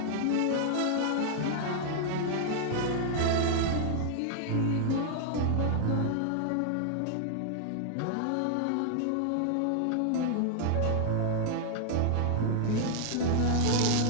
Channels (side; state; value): both; different; correlation 0.00